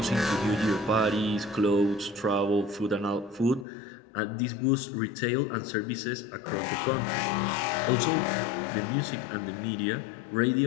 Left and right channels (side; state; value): right; drops out; at 3.7 s